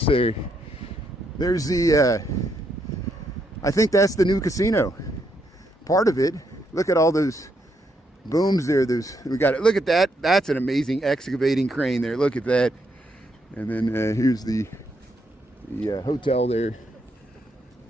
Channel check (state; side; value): normal; both; correlation 0.77